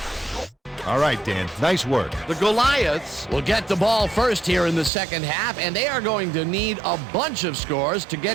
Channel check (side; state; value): left; drops out; at 4.9 s